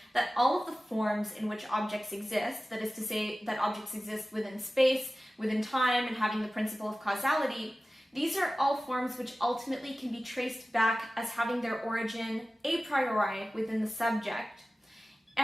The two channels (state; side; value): normal; both; correlation 0.96